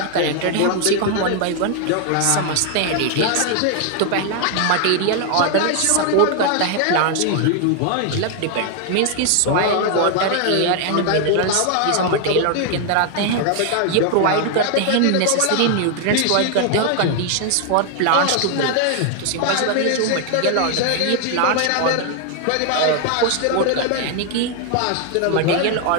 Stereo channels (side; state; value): both; different; correlation 0.00